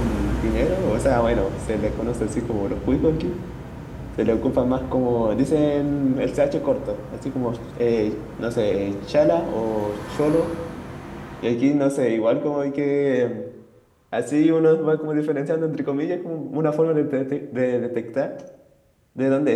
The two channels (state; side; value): identical; both; correlation 1.00